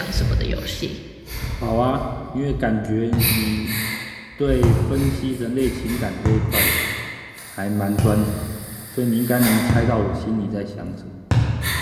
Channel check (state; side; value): identical; both; correlation 1.00